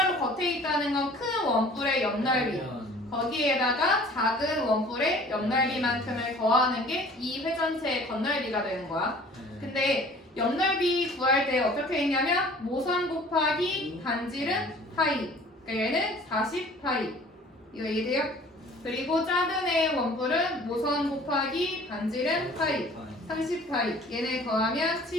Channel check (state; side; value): normal; both; correlation 0.49